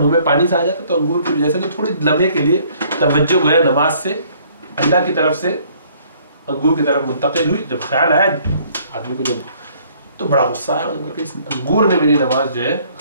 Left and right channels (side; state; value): both; inverted; correlation -0.60